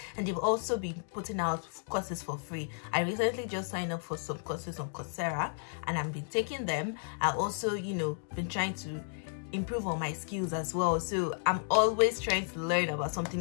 and they've also been putting out courses for free. I recently just signed up for some courses on Coursera, and I've been taking them. I also, you know, been trying to improve on my skills as well. So I'm always trying to learn about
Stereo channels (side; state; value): right; silent; digital silence